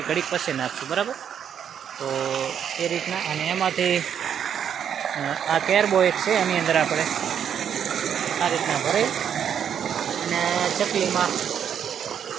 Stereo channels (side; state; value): left; quieter; 8.6 dB